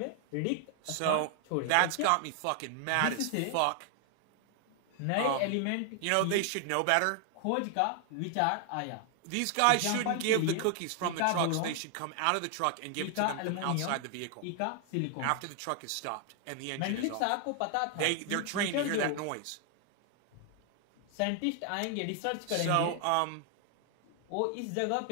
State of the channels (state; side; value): different; both; correlation 0.00